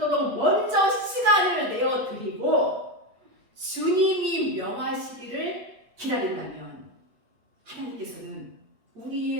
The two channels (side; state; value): left; late; 8.2 ms